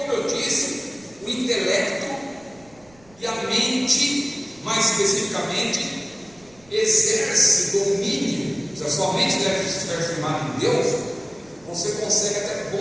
eu disse, o intelecto e a mente, mais especificamente, exerce domínio. Se a sua mente estiver firmada em Deus, você consegue até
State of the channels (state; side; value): noise; right; rumble, 27 dB below the sound